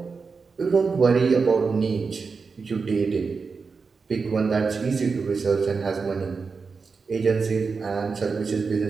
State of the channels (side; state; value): left; quieter; 4.9 dB